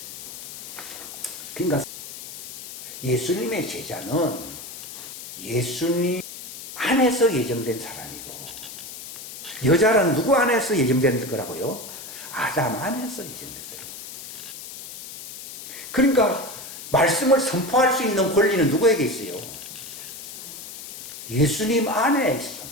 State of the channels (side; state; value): left; noise; hiss, 12 dB below the sound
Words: 그러니까 예수님의 제자는 예수님 안에서 예정된 사람이고, 여자는 누구 안에서 예정된 거라고요? 아담 안에서 예정된 사람. 그러니까 말씀을 선포할 수 있는 권리는 누구에게 있어요? 예수님 안에 있어.